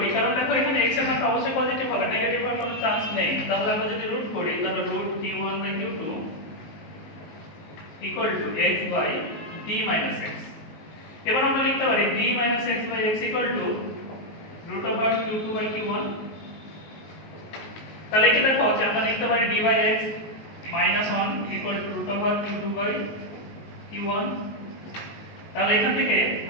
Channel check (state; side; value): late; right; 19 ms